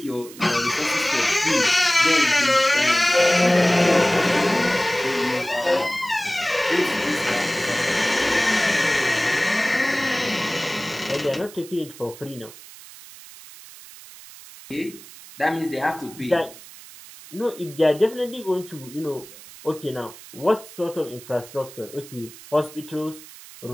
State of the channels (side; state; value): right; noise; hiss, 18 dB below the sound